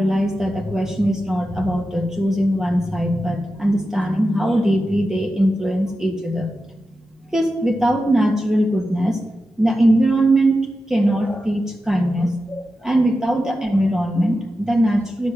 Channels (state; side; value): normal; both; correlation 0.91